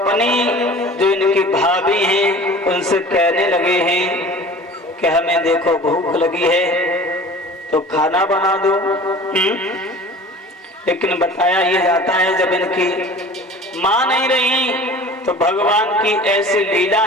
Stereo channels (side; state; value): both; normal; correlation 0.42